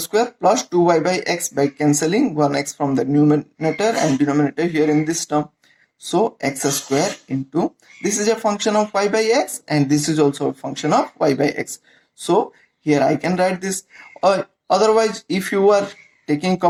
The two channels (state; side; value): identical; both; correlation 1.00